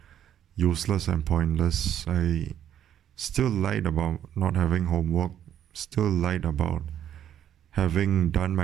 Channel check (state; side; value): quieter; left; 10.2 dB